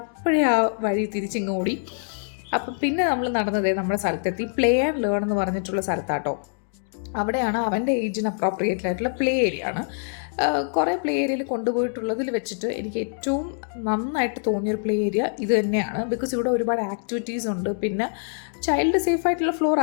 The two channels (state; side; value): silent; right; digital silence